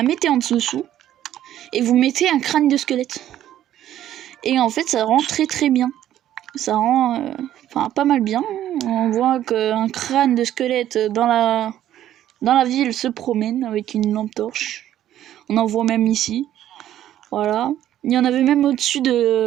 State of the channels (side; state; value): left; quieter; 12.0 dB